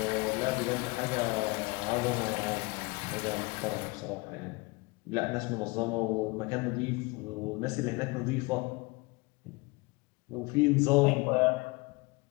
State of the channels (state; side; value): quieter; right; 25.8 dB